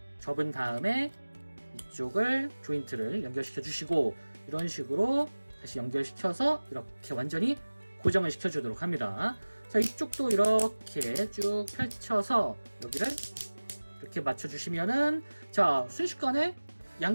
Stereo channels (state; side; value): inverted; both; correlation -1.00